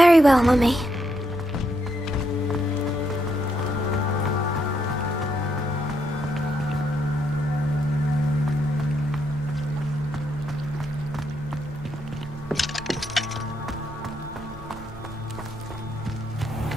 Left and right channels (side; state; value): both; normal; correlation 0.78